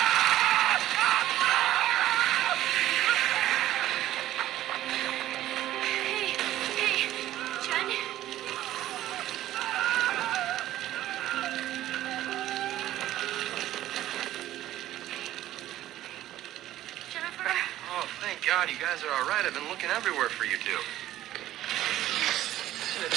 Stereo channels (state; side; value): quieter; left; 13.9 dB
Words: God, you guys are all right. I've been looking everywhere for you two.